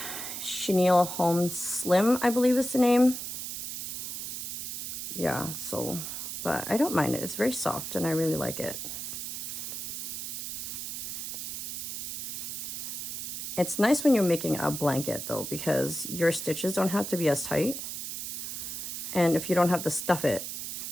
Holmes Slim, I believe is the name. Yeah, so, but I don't mind it. It's very soft and I really like it. It's nice when you're making a blanket though, because your stitches don't have to be as tight. And if you don't have to stuff it,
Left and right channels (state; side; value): noise; right; hiss, 5 dB below the sound